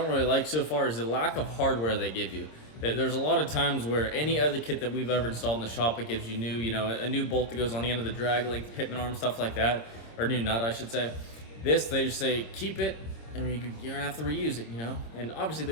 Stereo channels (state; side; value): late; right; 26 ms